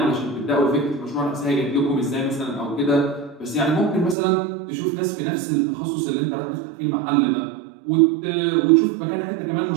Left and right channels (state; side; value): drops out; left; at 4.2 s